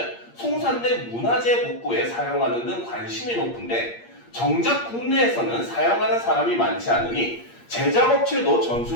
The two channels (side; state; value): right; late; 8.6 ms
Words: 송산된 문화재 복구에 사용하는 등 관심이 높은데 정작 국내에서는 사용하는 사람이 많지 않으니 제작업체도